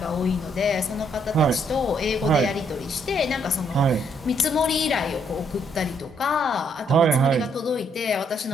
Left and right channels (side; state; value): both; normal; correlation 0.71